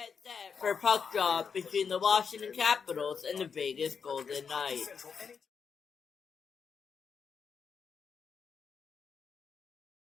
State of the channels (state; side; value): quieter; right; 6.2 dB